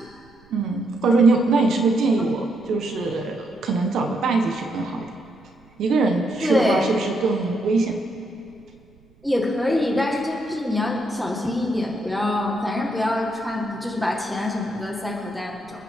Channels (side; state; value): right; noise; rumble, 29 dB below the sound